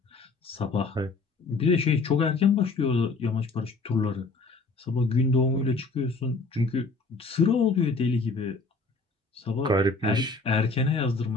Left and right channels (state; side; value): quieter; right; 3.8 dB